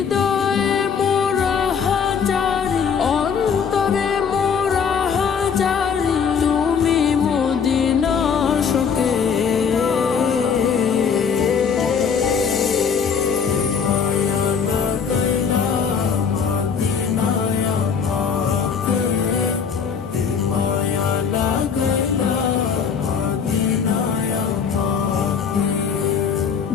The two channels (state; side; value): quieter; right; 6.5 dB